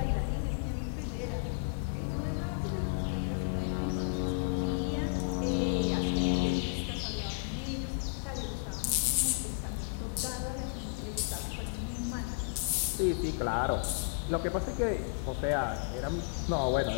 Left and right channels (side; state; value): right; quieter; 35.5 dB